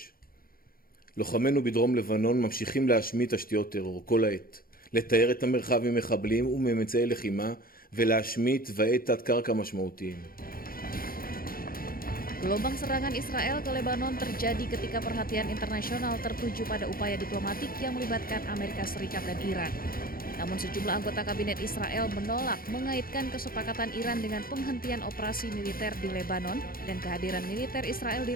לוחמינו בדרום לבנון ממשיכים להשמיד תשתיות טרור כל העת. לתאר את המרחב ממחבלים וממצאי לחימה ולהשמיד תוואי תת-קרקע משמעותיים. Gelombang serangan Israel ke Lebanon terjadi ketika perhatian internasional tertuju pada upaya diplomatik yang melibatkan Amerika Serikat dan Iran. Namun sejumlah anggota kabinet Israel menolak mengaitkan kesepakatan Iran dengan penghentian operasi militer di Lebanon dan kehadiran militer Israel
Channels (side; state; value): right; late; 0.42 ms